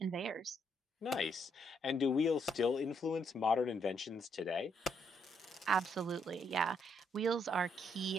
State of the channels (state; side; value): normal; both; correlation 0.74